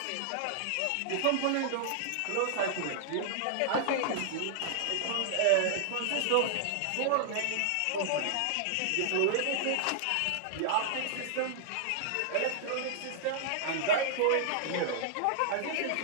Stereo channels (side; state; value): both; different; correlation -0.01